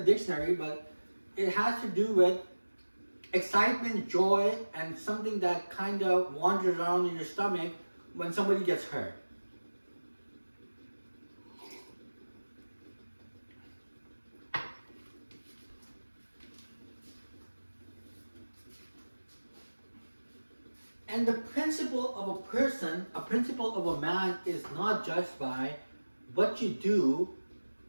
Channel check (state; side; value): inverted; both; correlation -1.00